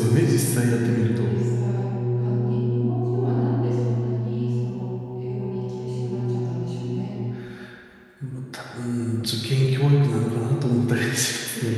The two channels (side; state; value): both; identical; correlation 1.00